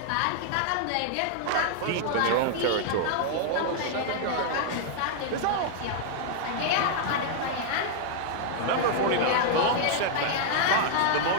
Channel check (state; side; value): different; both; correlation -0.01